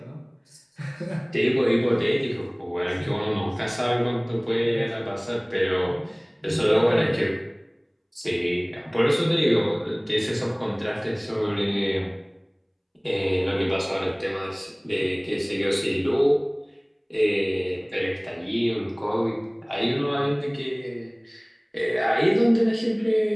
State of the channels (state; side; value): identical; both; correlation 1.00